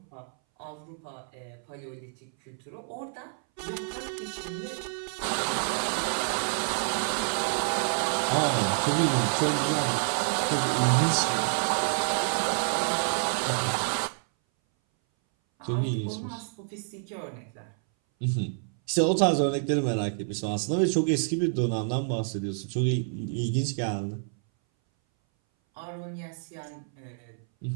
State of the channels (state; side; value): silent; left; 58 dB below the other